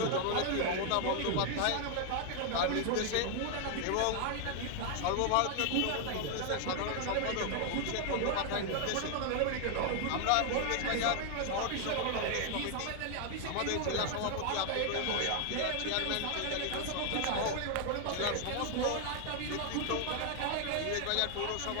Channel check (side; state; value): both; different; correlation 0.00